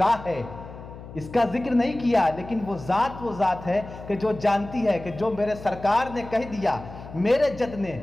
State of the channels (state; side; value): noise; left; hum, 14 dB below the sound